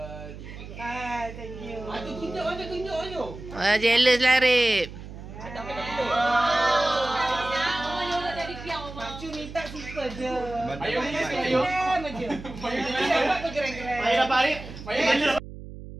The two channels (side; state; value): right; noise; hum, 13 dB below the sound